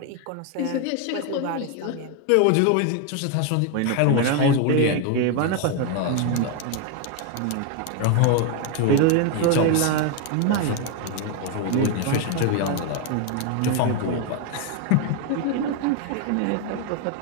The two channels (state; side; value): different; both; correlation 0.01